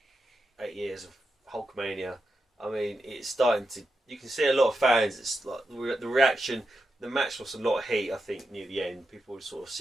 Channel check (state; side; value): normal; both; correlation 0.87